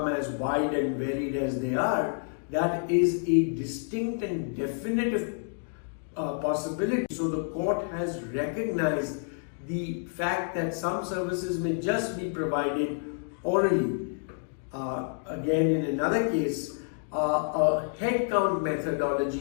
as wide and varied as they are, that is a distinct and definitive possibility. So the court has recognized the fact that some services may just be provided orally. Again, in another case, a headcount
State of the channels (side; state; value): right; silent; digital silence